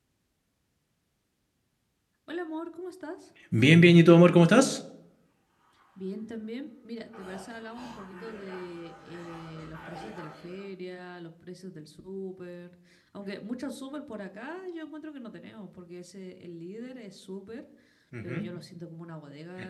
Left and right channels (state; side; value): identical; both; correlation 1.00